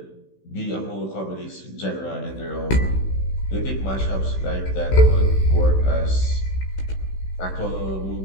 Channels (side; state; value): right; late; 16 ms